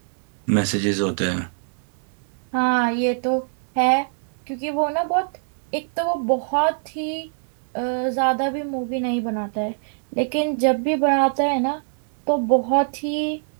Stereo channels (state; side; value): silent; left; 63 dB below the other